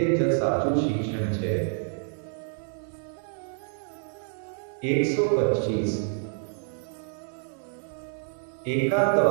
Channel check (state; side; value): silent; left; digital silence